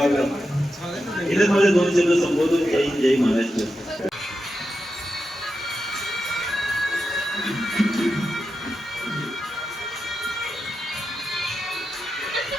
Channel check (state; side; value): normal; both; correlation 0.89